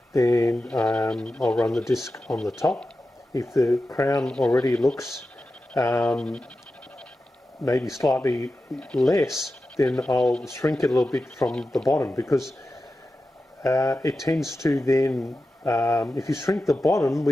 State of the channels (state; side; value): normal; both; correlation 0.92